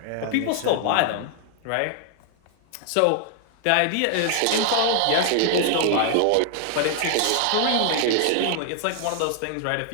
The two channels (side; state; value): both; different; correlation 0.00